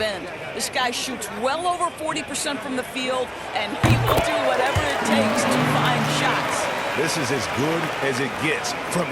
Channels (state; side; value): identical; both; correlation 1.00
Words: end. This guy shoots well over 40% from the field, and he will do whatever it takes to find shots. This is as good as it gets from